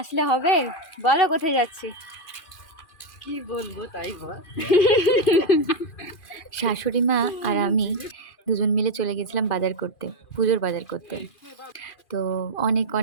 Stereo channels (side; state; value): right; late; 2.4 ms